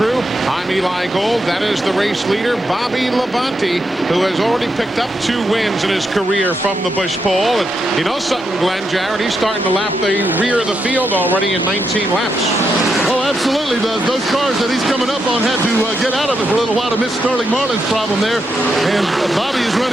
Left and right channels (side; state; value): both; normal; correlation 0.83